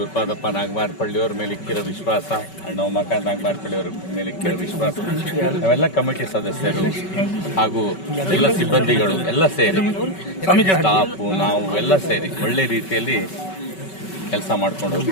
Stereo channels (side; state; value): right; late; 5.3 ms